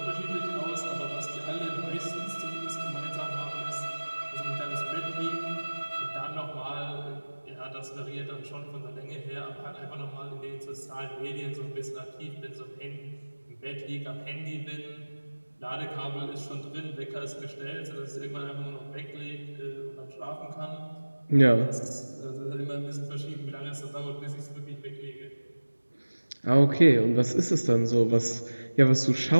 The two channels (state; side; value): inverted; both; correlation -1.00